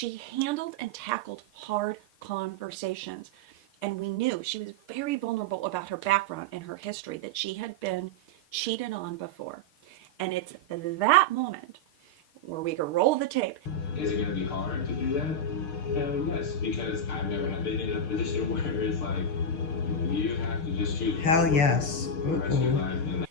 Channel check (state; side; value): late; right; 6.5 ms